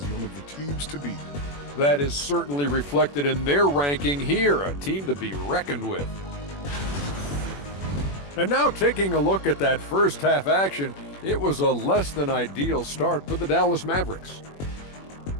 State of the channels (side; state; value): right; late; 21 ms